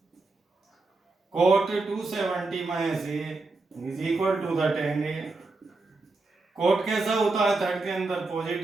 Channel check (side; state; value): left; quieter; 3.5 dB